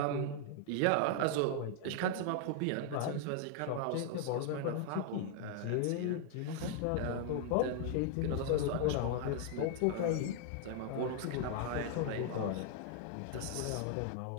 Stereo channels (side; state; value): both; different; correlation 0.00